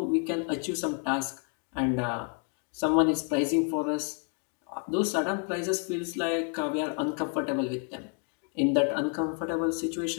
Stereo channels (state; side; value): quieter; right; 39.8 dB